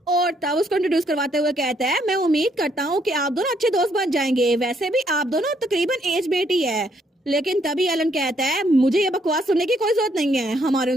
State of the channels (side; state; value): both; normal; correlation 0.70